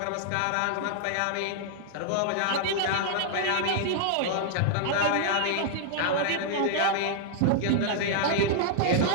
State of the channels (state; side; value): different; both; correlation -0.01